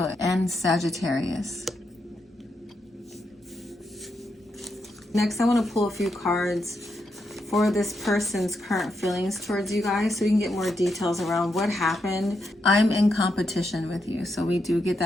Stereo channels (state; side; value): normal; both; correlation 0.82